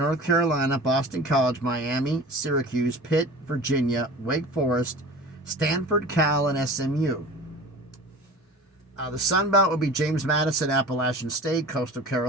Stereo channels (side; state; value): both; normal; correlation 0.37